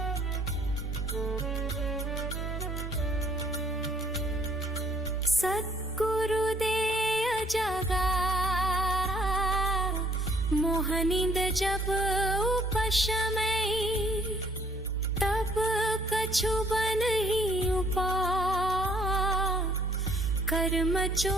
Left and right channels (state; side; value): normal; both; correlation 0.62